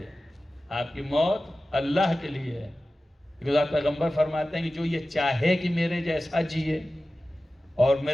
آپ کی موت اللہ کے لیے ہے. کیونکہ پیغمبر فرماتے ہیں کہ جو یہ چاہے کہ میرے جیسا جیے اور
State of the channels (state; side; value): normal; both; correlation 0.95